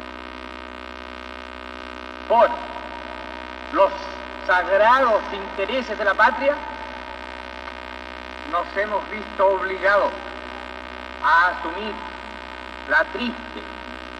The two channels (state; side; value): identical; both; correlation 1.00